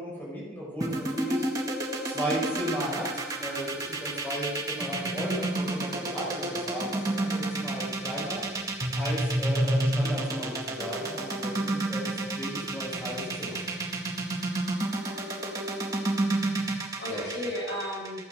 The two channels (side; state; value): both; normal; correlation 0.60